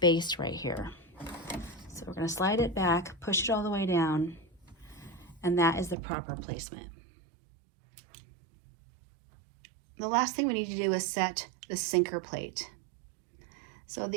right here. So we're going to slide it back, push it all the way down, and that is the proper placement. The last thing we need to do is set the sinker plate. So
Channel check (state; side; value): drops out; left; at 6.0 s